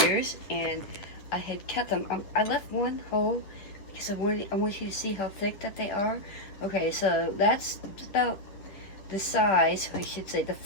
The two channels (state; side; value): late; right; 10 ms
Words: and I had cut them. I left one whole because I want you to see how thick that they are. Okay, so that's about the size, I should say, the